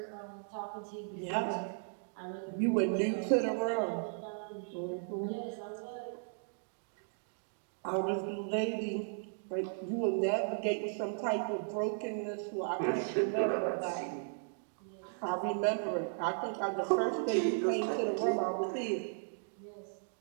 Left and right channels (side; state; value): left; silent; digital silence